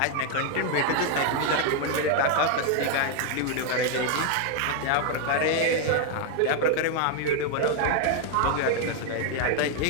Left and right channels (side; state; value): both; different; correlation 0.00